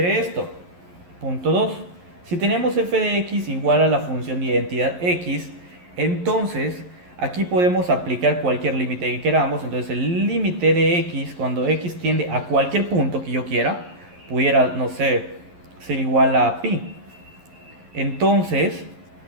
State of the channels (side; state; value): left; late; 11 ms